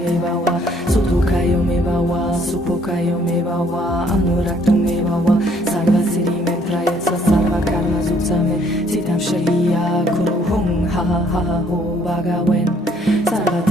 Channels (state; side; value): normal; both; correlation 0.64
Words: Sutukayo Mebawa Supokayo Mebawa Anuraktu Mebawa Sarva Siri Memprayatsa Sarva Karma Zutsame Sitam Sharia Kuru Hung Ha Ha Ha Ho Bagawen Sarva